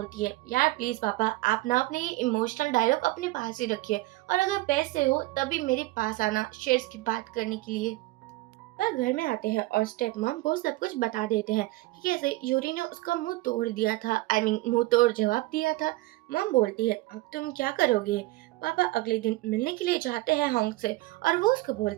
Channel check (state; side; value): quieter; left; 19.6 dB